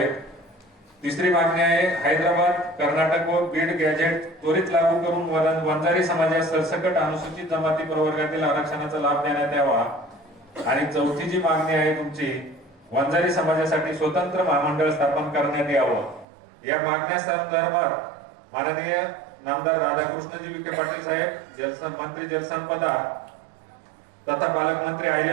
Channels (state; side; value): drops out; left; at 16.2 s